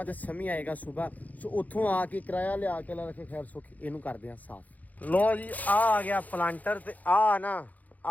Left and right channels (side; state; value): right; late; 0.078 ms